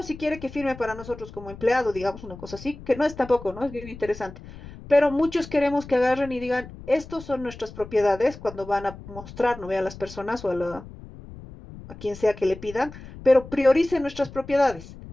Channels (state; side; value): noise; left; rumble, 16 dB below the sound